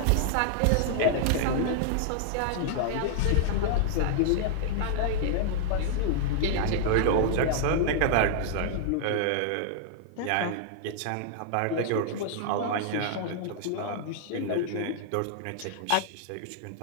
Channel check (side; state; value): both; different; correlation -0.01